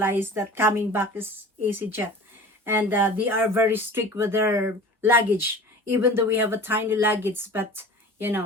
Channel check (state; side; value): normal; both; correlation 0.39